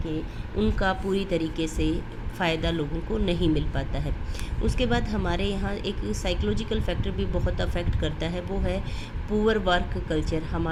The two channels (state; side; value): identical; both; correlation 1.00